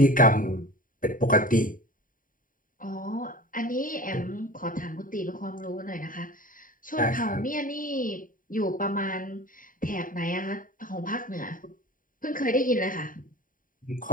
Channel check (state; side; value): late; right; 0.39 ms